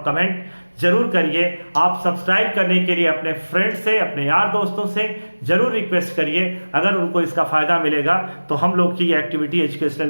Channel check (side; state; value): both; inverted; correlation -1.00